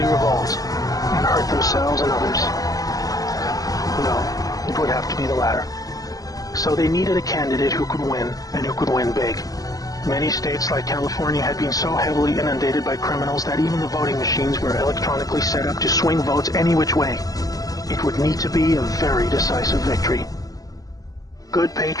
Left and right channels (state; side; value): late; right; 0.17 ms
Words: revolt and hurt themselves and others. No, it would have to be the latter. So they needed a candidate who could win, and who could win big. Many states like California had been so heavily inundated by criminals that even the voting machines were electronically set up to swing votes any which way. It would need to be a very decisive victory. Good